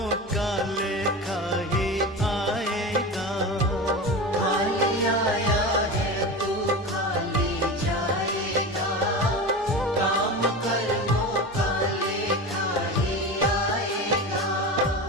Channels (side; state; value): both; normal; correlation 0.26